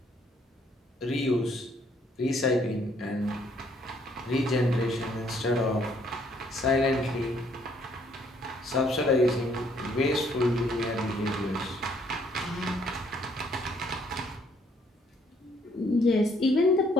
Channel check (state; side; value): normal; both; correlation 0.66